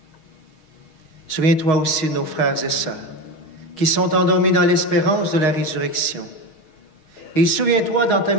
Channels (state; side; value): late; right; 6.4 ms